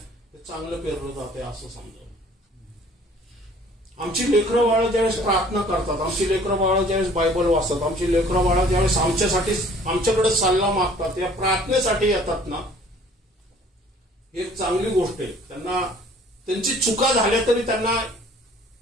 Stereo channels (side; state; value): both; normal; correlation 0.53